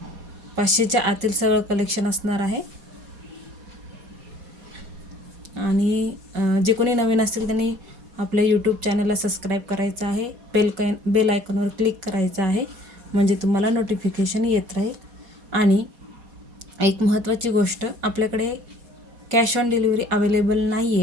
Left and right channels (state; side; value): late; left; 4.2 ms